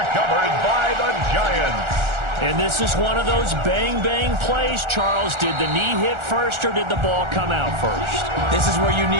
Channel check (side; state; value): left; late; 1.4 ms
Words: by the Giants. And this is one of those bang-bang plays, Charles. Did the knee hit first or did the ball come out first? This is where you